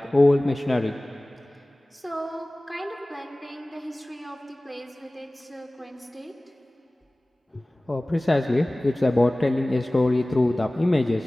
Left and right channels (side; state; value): both; normal; correlation 0.98